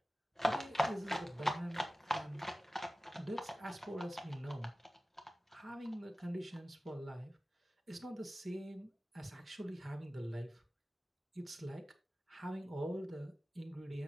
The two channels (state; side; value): normal; both; correlation 0.96